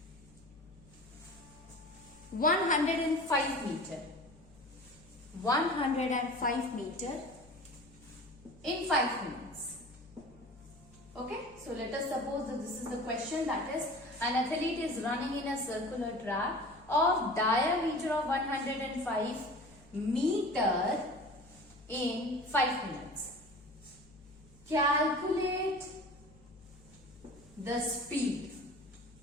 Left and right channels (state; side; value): noise; left; hum, 24 dB below the sound